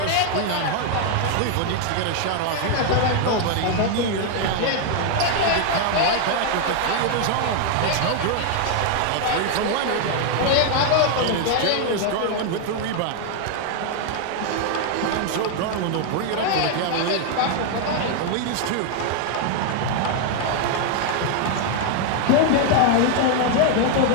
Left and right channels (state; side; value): different; both; correlation 0.00